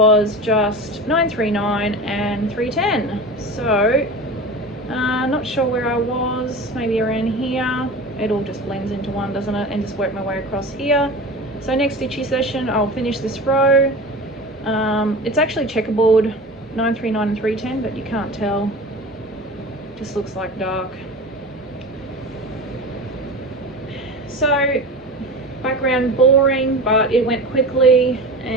just 939 and 310. So not sure where I was, maybe around here. It all just blends into one, doesn't it? And just work my way across here. So next stitchy session I'll finish this row. It's actually checkerboard 939 and 310, but you can't tell, just looks like dark. So background boring, but it went quickly,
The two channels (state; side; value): normal; both; correlation 0.32